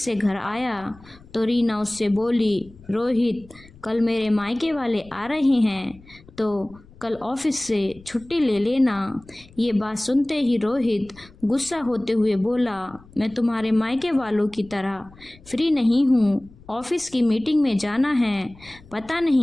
से घर आया तो रीना उससे बोली, रोहित, कल मेरे मायके वाले आ रहे हैं तो कल ऑफिस से छुट्टी ले लेना। ये बात सुनते ही रोहित गुस्सा होते हुए बोला, मैं तुम्हारे मायके वालों की तरह फ्री नहीं हूँ। ऑफिस की मीटिंग में जाना है। पता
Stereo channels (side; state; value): left; noise; rumble, 24 dB below the sound